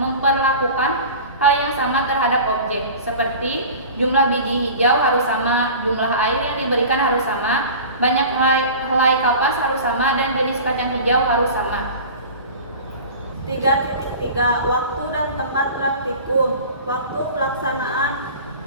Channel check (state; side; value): inverted; both; correlation -0.37